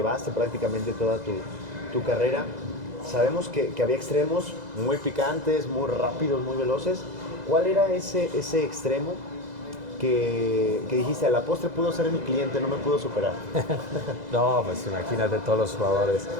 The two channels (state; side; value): late; left; 2.0 ms